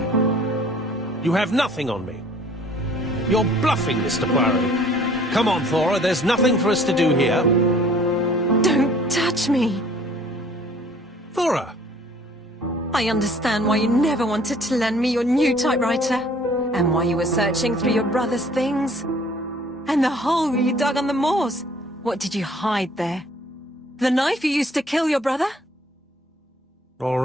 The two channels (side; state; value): both; normal; correlation 0.55